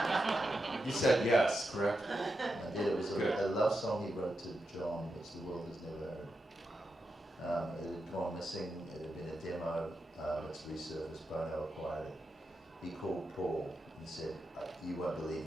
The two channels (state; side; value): normal; both; correlation 0.87